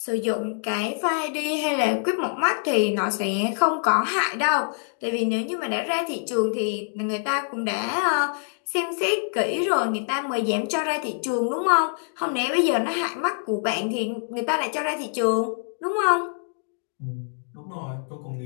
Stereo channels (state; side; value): silent; right; digital silence